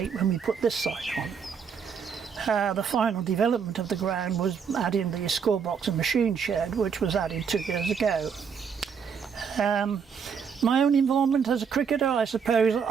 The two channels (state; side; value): quieter; left; 6.6 dB